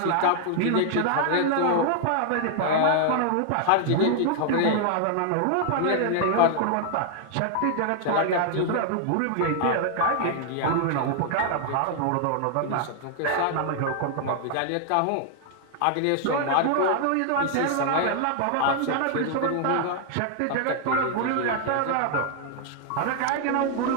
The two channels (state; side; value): different; both; correlation -0.01